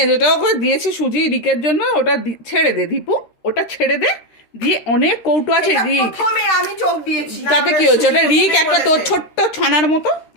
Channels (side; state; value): right; late; 13 ms